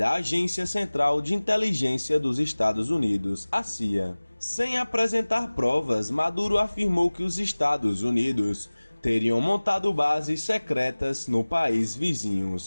Agência Central de Inteligência dos Estados Unidos, a CIA. Sem apresentar provas, Maduro afirmou que os Estados Unidos teriam montado bases secretas no país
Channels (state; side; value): inverted; both; correlation -1.00